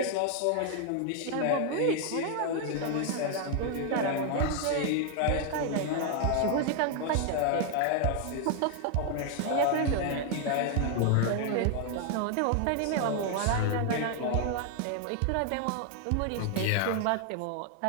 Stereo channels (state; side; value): different; both; correlation 0.00